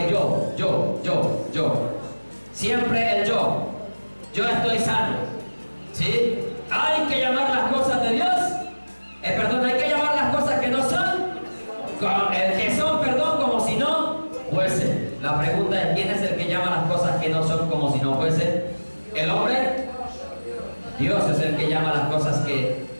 yo. Siempre el yo. Yo estoy sano. ¿Sí? Hay que llamar las cosas de Dios. Hay que llamar las cosas que no son. Que son, como si no fuesen. La pregunta es, ¿quién es el que llama las cosas que no son como si no fuesen? ¿El hombre? Dios es el que llama las cosas que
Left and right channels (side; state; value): both; inverted; correlation -1.00